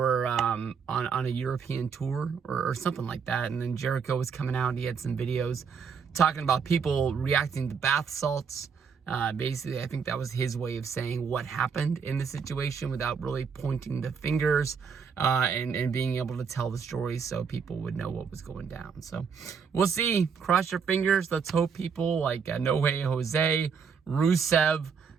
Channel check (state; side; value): quieter; left; 6.2 dB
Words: on a European tour or something like that, and then Jericho was coming out and he had some videos talking about people reacting to bath salts. Basically, I think that was his way of saying what happened in the situation without really pointing the fingers, and being able to tell the story so people would know what was going down. So we'll see. Cross your fingers. Let's hope people like No Way Jose, Rusev,